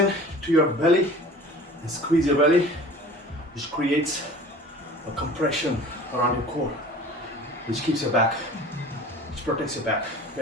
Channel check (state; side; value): normal; both; correlation 0.43